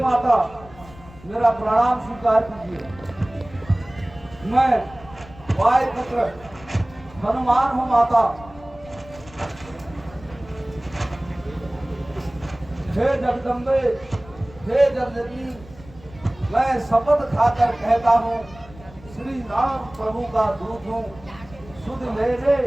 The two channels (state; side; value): noise; left; rumble, 21 dB below the sound